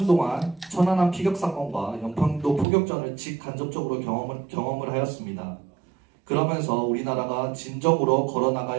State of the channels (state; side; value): drops out; left; at 2.7 s